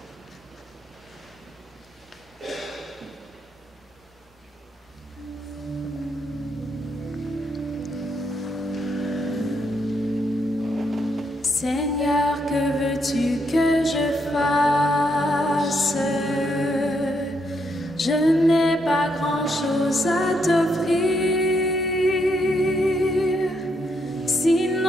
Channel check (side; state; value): both; normal; correlation 0.77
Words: Seigneur, que veux-tu que je fasse? Je n'ai pas grand-chose à t'offrir,